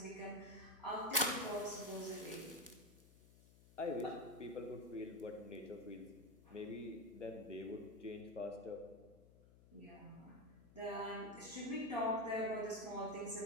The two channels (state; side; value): noise; left; hum, 22 dB below the sound